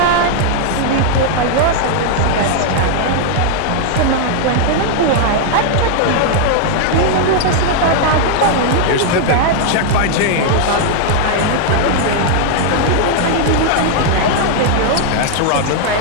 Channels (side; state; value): both; different; correlation 0.00